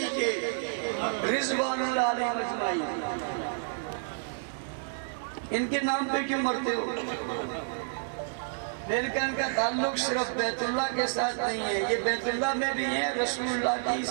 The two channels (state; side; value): silent; left; digital silence